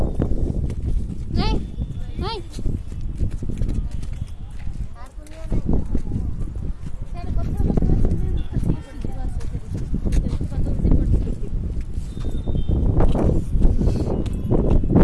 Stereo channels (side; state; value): both; identical; correlation 1.00